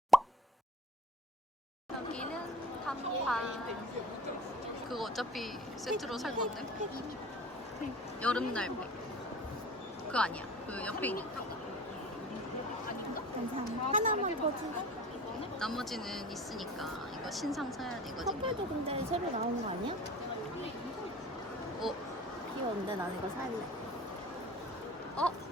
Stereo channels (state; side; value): normal; both; correlation 0.41